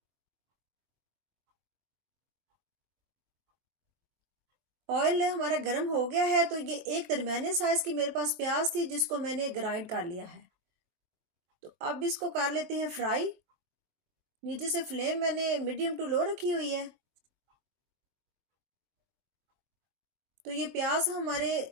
ऑयल हमारा गर्म हो गया है। तो ये एक दरमियाने साइज की मेरे पास प्याज थी, जिसको मैंने ग्राइंड कर लिया है। तो अब इसको कर लेते हैं फ्राई। नीचे से फ्लेम मैंने मीडियम टू लो रखी हुई है। तो ये प्याज हमारे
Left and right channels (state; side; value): late; left; 24 ms